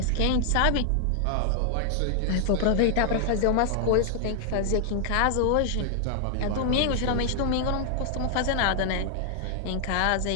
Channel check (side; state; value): both; different; correlation 0.00